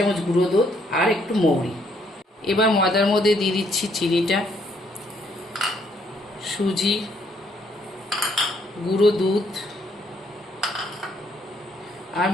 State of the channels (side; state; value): both; normal; correlation 0.69